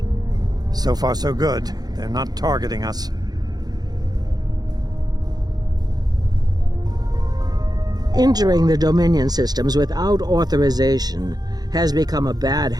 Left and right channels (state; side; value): late; left; 0.19 ms